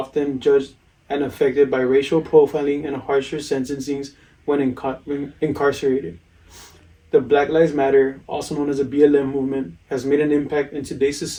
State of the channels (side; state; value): both; identical; correlation 1.00